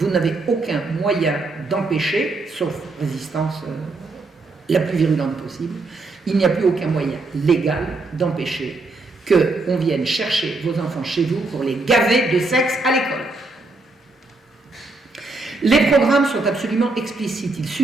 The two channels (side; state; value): left; quieter; 3.3 dB